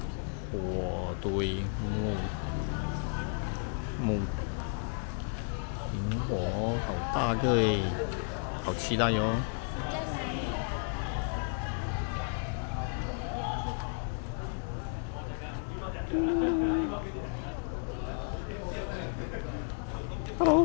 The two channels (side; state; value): right; silent; 56 dB below the other